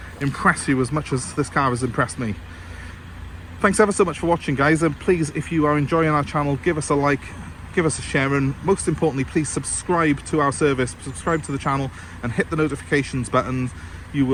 impress you as much as this car has impressed me. Thanks ever so much for watching, guys, and please, if you are enjoying our channel, give us a like, give us a share, and most importantly, please subscribe to our service, subscribe to the channel and hit the notifications button. You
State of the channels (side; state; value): both; identical; correlation 1.00